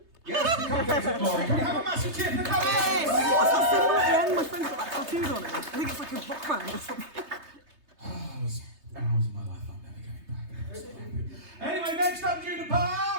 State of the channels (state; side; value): late; left; 3.3 ms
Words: Yes, the cupcakes of glory. Can we have a massive cheer for the cupcakes? What's that symbol at the end? My friend's got that tattooed on it. I think it's like a rock band or something. Oh, it was hours of my life I'm never going back. Anyway, next up, Juniper!